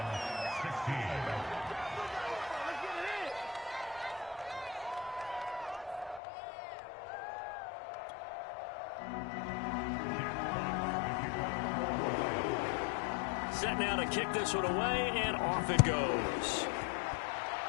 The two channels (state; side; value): drops out; right; at 6.2 s